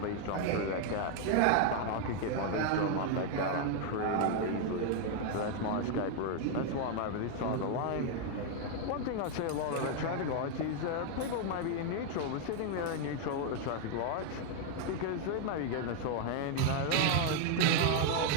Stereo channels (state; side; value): different; both; correlation 0.00